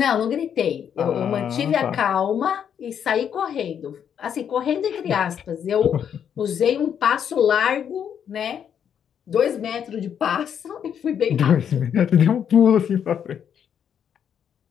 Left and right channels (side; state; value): right; quieter; 8.5 dB